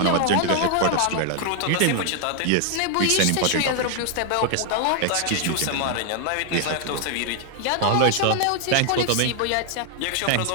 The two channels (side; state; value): both; different; correlation 0.00